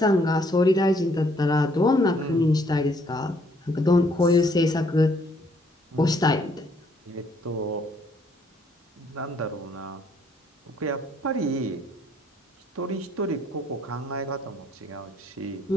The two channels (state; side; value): normal; both; correlation 0.66